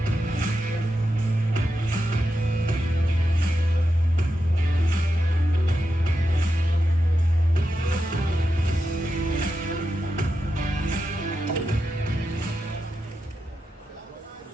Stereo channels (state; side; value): normal; both; correlation 0.88